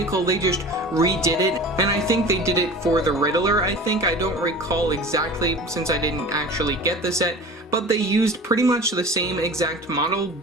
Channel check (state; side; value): normal; both; correlation 0.38